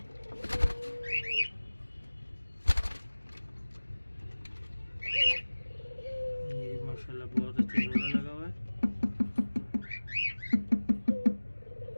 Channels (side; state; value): both; inverted; correlation -1.00